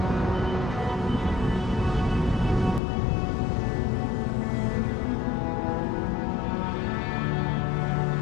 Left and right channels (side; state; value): right; drops out; at 2.8 s